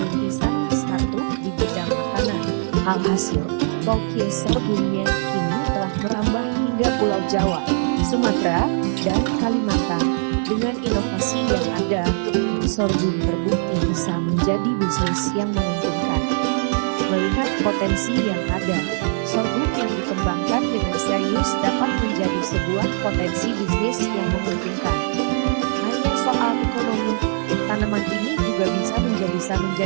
startup di bidang makanan. Alhasil, Kokis sorghumnya kini telah merambah hingga Pulau Jawa, Sumatera, dan Kalimantan. Dengan inovasi yang ada, sorghum terbukti bisa menjadi bisnis yang menguntungkan. Melihat potensi yang ada, sorghum yang dikembangkan dengan serius dapat menjadi sebuah potensi bisnis yang menguntungkan. Hanya soal ekonomi, tanaman ini juga bisa menjadi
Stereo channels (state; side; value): silent; left; digital silence